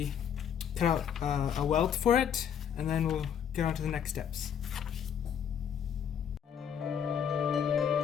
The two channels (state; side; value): quieter; right; 8.4 dB